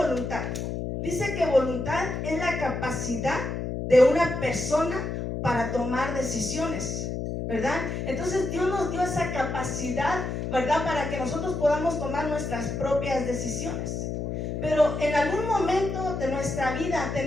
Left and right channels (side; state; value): left; noise; hum, 3 dB below the sound